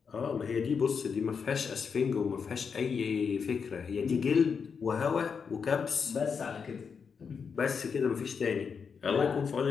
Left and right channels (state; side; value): quieter; right; 6.0 dB